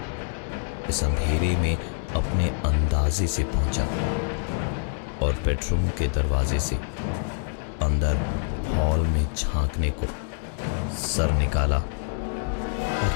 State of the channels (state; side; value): silent; right; digital silence